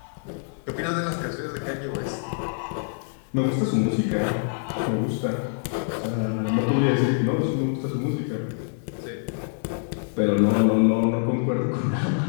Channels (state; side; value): silent; right; digital silence